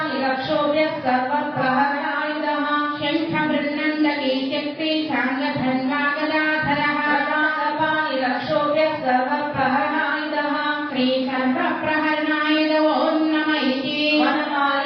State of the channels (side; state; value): both; identical; correlation 1.00